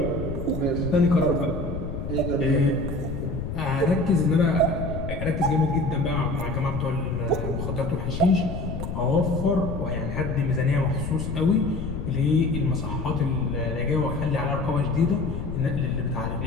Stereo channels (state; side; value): noise; left; rumble, 5 dB below the sound